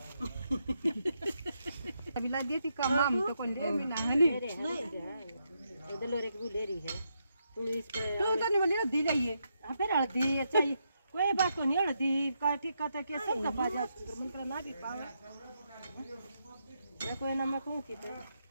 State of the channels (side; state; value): both; inverted; correlation -0.81